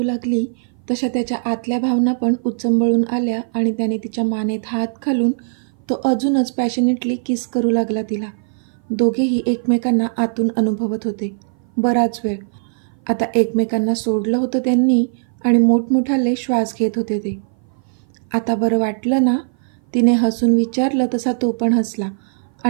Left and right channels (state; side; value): silent; left; 57 dB below the other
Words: लागली तशा त्याच्या आतल्या भावना पण उचंबळून आल्या आणि त्याने तिच्या मानेत हात घालून तो अजूनच पॅशनेटली किस करू लागला तिला. दोघेही एकमेकांना आतून अनुभवत होते. बराच वेळ आता एकमेकांना सोडलं होतं त्यांनी आणि मोठमोठाले श्वास घेत होते ते. आता बरं वाटलं ना, तिने हसून विचारलं तसा तो पण हसला